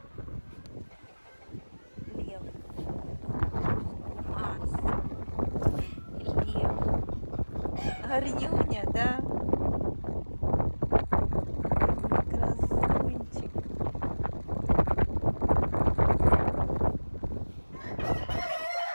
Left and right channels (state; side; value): inverted; both; correlation -1.00